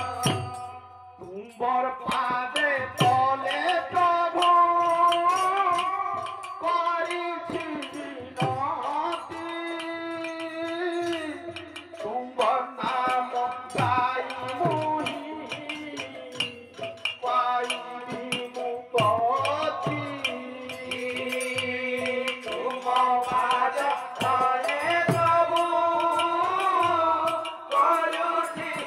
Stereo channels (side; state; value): both; identical; correlation 1.00